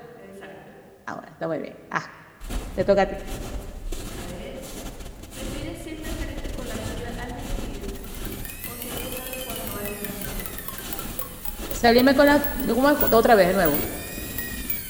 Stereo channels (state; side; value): identical; both; correlation 1.00